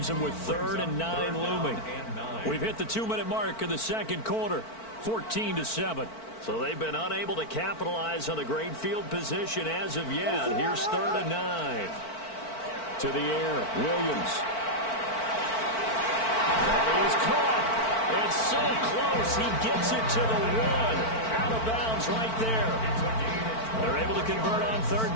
them with 3rd and 9 looming. We've hit the 2-minute mark of the second quarter. 14-7. So they've been unable to capitalize on the great field position as of yet. Here's 3rd and 9. To the air, Williams. That is caught. It's so close. He gets it to the 1. Out of bounds right there. They're able to convert on 3rd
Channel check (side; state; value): right; late; 4.5 ms